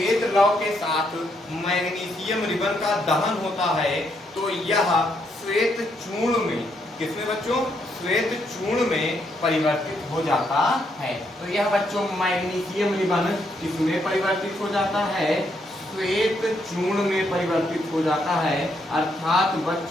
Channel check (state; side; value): normal; both; correlation 0.75